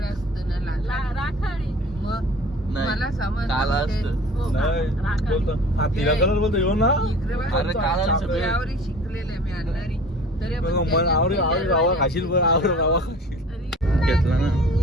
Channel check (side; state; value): both; normal; correlation 0.44